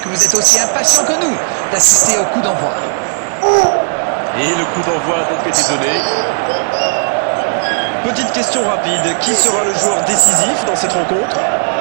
vous êtes aussi impatients que nous d'assister au coup d'envoi. Et le coup d'envoi a donc été donné. Petite question rapide, qui sera le joueur décisif dans cette rencontre?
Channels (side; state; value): left; silent; digital silence